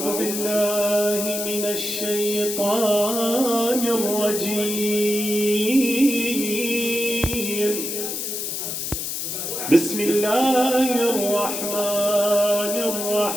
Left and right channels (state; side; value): noise; left; hiss, 4 dB below the sound